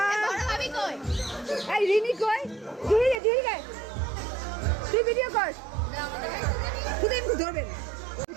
এই রিনি কই জুহি জুহি গে তুই ভিডিও কর তুই একটু ধরবেন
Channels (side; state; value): left; drops out; at 3.2 s